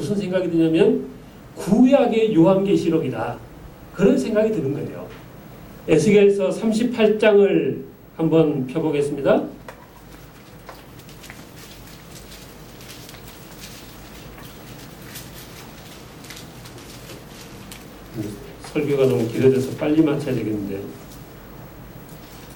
생각이 드냐면 구약의 요한계시록이다. 그런 생각이 드는 거예요. 에스겔서 38장을 한번 펴보겠습니다. 설교가 너무 길어져서 빨리 마쳐야 되겠는데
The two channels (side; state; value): both; identical; correlation 1.00